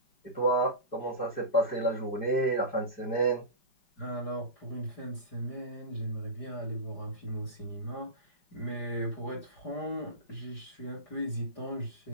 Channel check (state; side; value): late; right; 4.9 ms